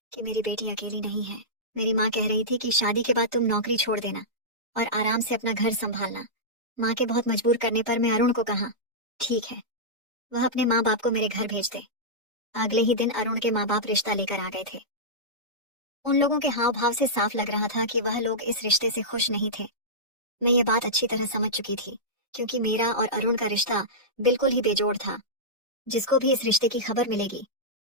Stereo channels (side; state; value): both; normal; correlation -0.13